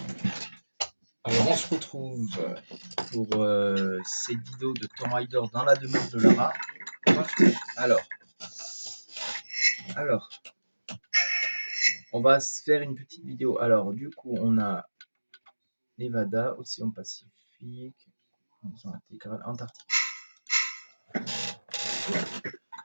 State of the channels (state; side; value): inverted; both; correlation -1.00